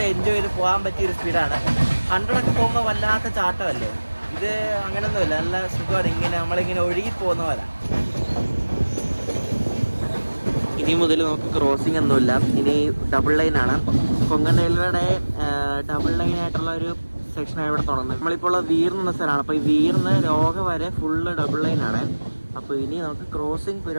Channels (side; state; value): both; inverted; correlation -1.00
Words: എൻജോയ് ചെയ്ത് പോകാൻ പറ്റിയ ഒരു സ്പീഡാണ്. 100 പോകുമ്പോൾ വല്ലാത്ത ചാട്ടമല്ലേ, ഇത് അങ്ങനെയൊന്നുമില്ല, നല്ല സുഖമാണ്. ഇങ്ങനെ നമ്മളിങ്ങനെ ഒഴുകി പോകുന്ന പോലെ. ഇനി മുതൽ നമുക്ക് ക്രോസിംഗ് ഒന്നുമില്ല, ഇനി ഡബിൾ ലൈനാണ്. കൊങ്കൺ റെയിൽവേയുടെ ഡബിൾ ലൈനായിട്ടുള്ള ഒരു സെക്ഷനാണ് ഇവിടെ തുടങ്ങുന്നത്. നമ്മളിപ്പോൾ ഉള്ള വീർന്ന സ്ഥലമാണ്. അപ്പോൾ ഈ വീർന്ന് ലോക വരെ ഫുള്ള് ഡബിൾ ലൈനാണ്. അപ്പോൾ ഇനി നമുക്ക് ക്രോസിംഗ്